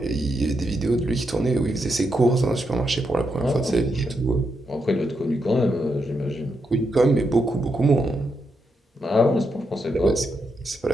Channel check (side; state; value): both; normal; correlation 0.82